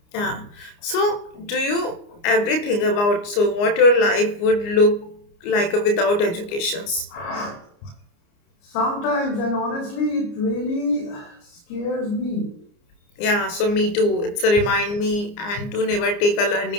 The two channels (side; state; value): right; late; 29 ms